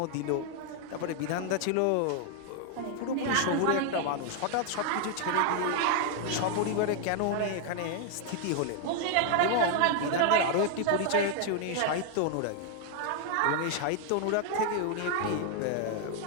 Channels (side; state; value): both; different; correlation 0.00